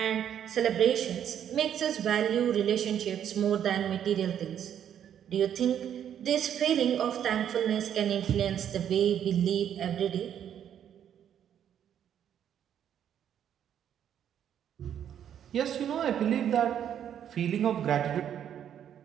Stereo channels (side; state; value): left; quieter; 9.5 dB